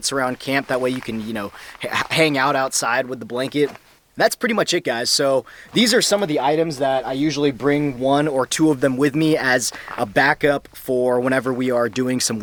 around camp, that way you can, you know, hang out outside with the blanket. That's pretty much it, guys. So these are some of the items that I usually bring 1 or 2 of them with me as a backup for whenever we are doing some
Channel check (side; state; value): both; identical; correlation 1.00